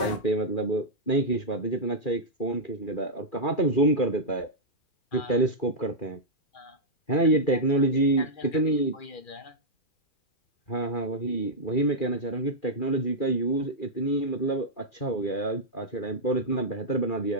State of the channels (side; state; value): right; late; 2.4 ms